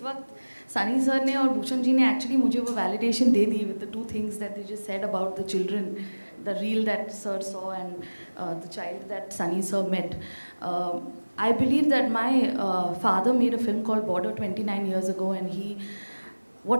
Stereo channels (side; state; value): both; inverted; correlation -1.00